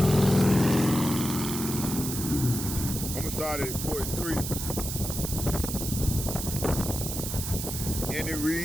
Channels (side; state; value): right; noise; hiss, 5 dB below the sound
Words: I'm gonna start at 43. And it